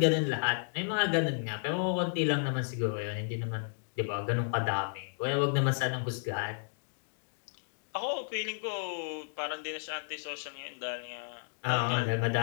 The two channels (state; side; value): silent; right; digital silence